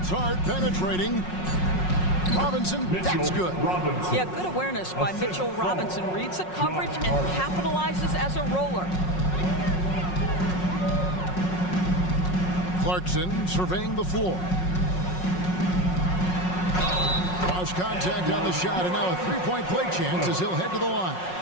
Hart penetrating. Robinson, that's good. Yeah, good awareness by Mitchell Robinson. Reads the coverage and capitalizes as a roller. Clarkson surveying the floor. Cross contact on the shot, and now a three-point play chance as he'll head to the line.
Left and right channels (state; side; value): late; right; 5.5 ms